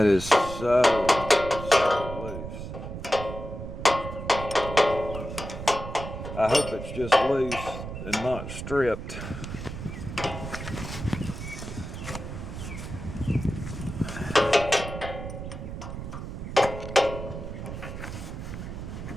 is so loose. I hope it's just loose and not stripped.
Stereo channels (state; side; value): noise; right; rumble, 8 dB below the sound